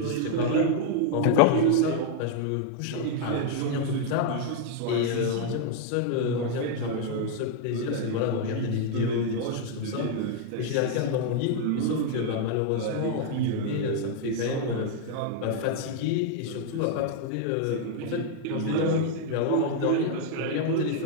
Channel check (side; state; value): both; different; correlation 0.00